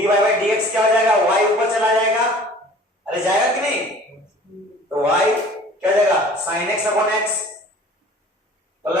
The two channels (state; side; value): normal; both; correlation 0.47